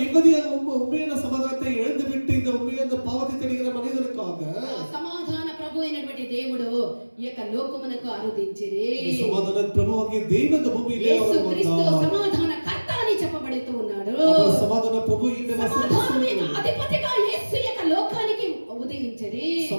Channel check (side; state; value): both; inverted; correlation -1.00